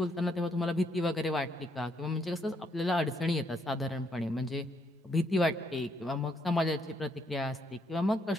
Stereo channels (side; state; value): both; normal; correlation 0.73